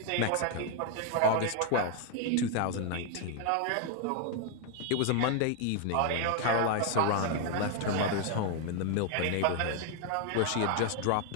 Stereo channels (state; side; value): different; both; correlation 0.00